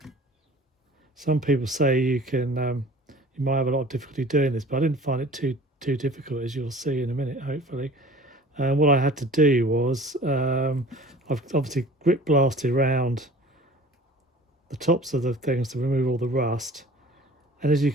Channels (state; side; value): normal; both; correlation 0.45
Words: Some people say you might have a lot of difficulty doing this, but I didn't find it too difficult, as you'll see in a minute, hopefully. What I had to do was I've obviously grip blasted around the tops of the things to remove all the rust, and as you